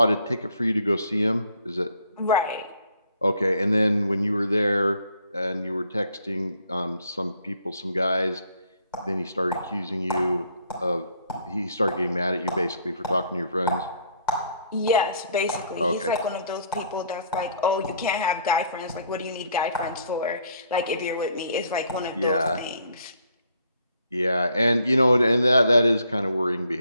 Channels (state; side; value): inverted; both; correlation -0.64